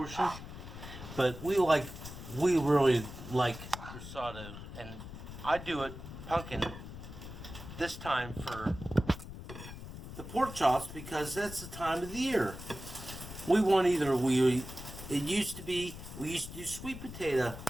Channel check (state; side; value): noise; left; rumble, 11 dB below the sound